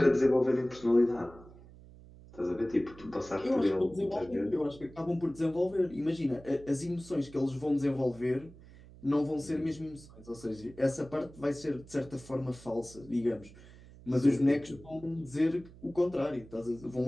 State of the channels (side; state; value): right; noise; hum, 20 dB below the sound